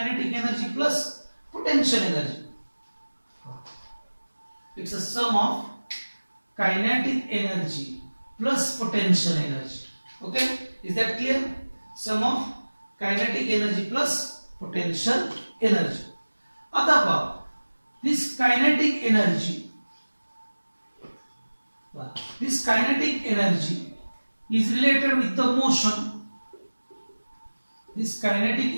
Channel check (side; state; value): both; inverted; correlation -1.00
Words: energy plus potential energy. It's a sum of kinetic energy plus potential energy. Okay, is that clear? Sum of kinetic energy plus potential energy. आता पहा, this kinetic energy is related with the motion. This kinetic